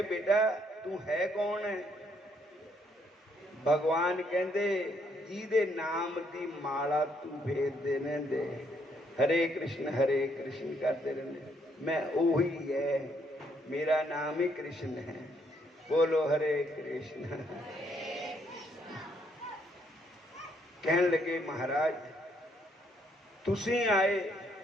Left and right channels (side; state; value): both; normal; correlation 0.71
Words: ਬੇਟਾ ਤੂੰ ਹੈ ਕੌਣ ਹੈ? ਭਗਵਾਨ ਕਹਿੰਦੇ ਜਿਹਦੇ ਨਾਮ ਦੀ ਮਾਲਾ ਤੂੰ ਫੇਰਦੇ ਰਹਿੰਦੇ, ਹਰੇ ਕ੍ਰਿਸ਼ਨ ਕਰਦੇ ਰਹਿੰਦੇ, ਮੈਂ ਉਹੀ ਹੈ, ਮੇਰਾ ਨਾਮ ਹੀ ਕ੍ਰਿਸ਼ਨ ਹੈ। ਬੋਲੋ ਹਰੇ ਕ੍ਰਿਸ਼ਨ। ਕਹਿਣ ਲੱਗੇ ਮਹਾਰਾਜ ਤੁਸੀਂ ਆਏ,